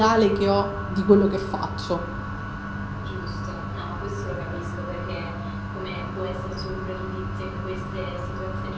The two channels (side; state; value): both; identical; correlation 1.00